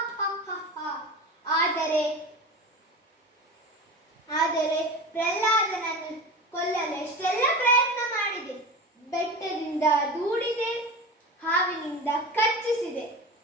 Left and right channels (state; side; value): normal; both; correlation 0.30